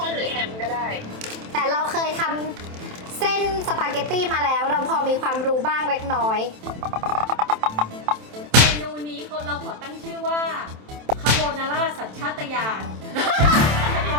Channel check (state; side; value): late; left; 27 ms